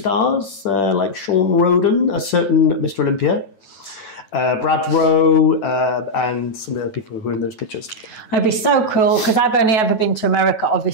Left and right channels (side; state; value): right; late; 9.2 ms